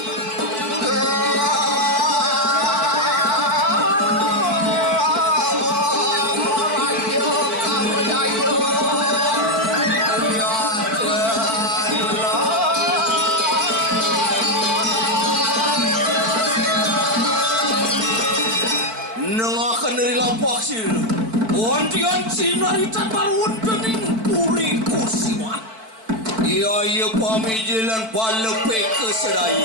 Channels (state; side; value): late; left; 4.5 ms